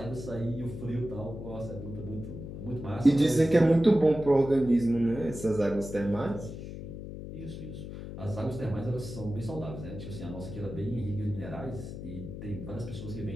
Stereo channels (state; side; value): noise; left; hum, 9 dB below the sound